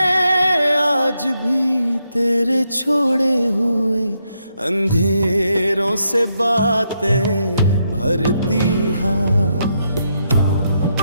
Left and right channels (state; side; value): inverted; both; correlation -0.80